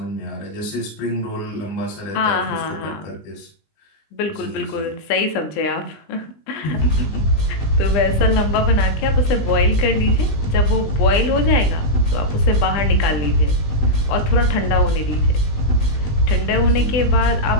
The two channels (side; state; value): right; late; 20 ms